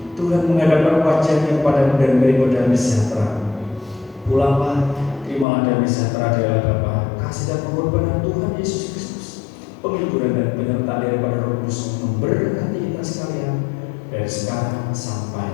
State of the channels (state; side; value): drops out; right; at 5.5 s